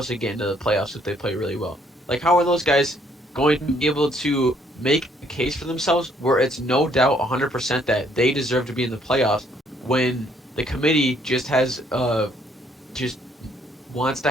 to get into the playoffs if they play really well? Like, how are those guys going to be able to make a case for themselves where it's no doubt 100% that they deserve to be in the playoffs when the committee just has just wants to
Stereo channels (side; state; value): both; normal; correlation 0.66